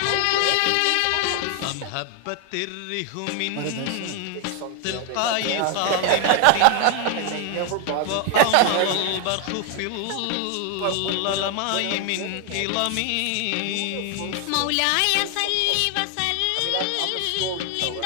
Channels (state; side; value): different; both; correlation 0.01